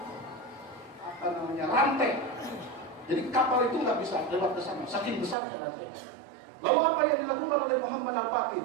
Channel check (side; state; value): left; drops out; at 5.4 s